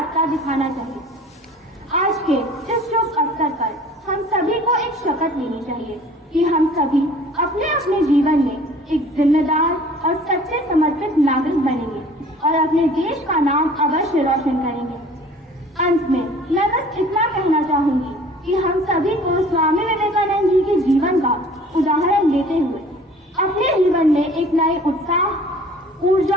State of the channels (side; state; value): both; normal; correlation 0.49